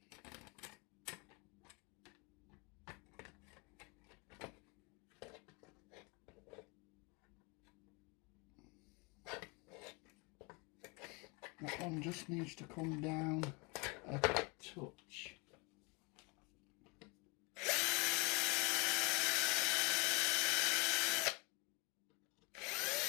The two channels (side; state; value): right; quieter; 27.7 dB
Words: That one just needs to come down a touch.